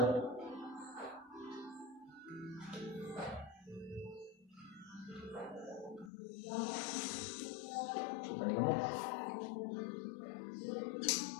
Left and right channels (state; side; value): drops out; right; at 6.1 s